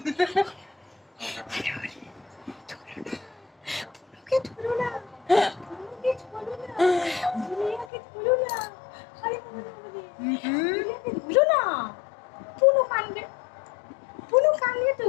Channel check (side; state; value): right; drops out; at 7.9 s